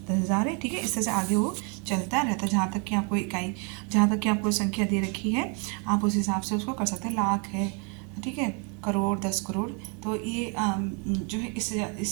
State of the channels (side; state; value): left; quieter; 36.4 dB